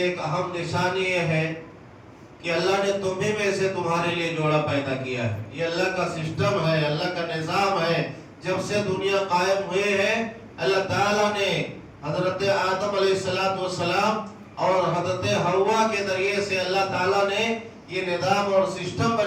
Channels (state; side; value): identical; both; correlation 1.00